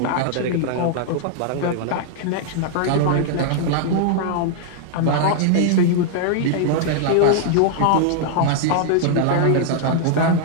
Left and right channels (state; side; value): different; both; correlation -0.01